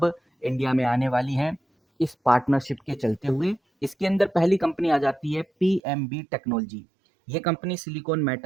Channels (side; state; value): left; drops out; at 5.8 s